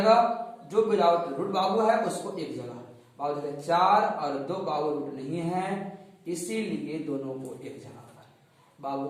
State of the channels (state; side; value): identical; both; correlation 1.00